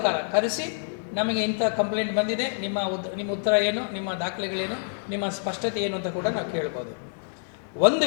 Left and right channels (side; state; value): right; silent; 58 dB below the other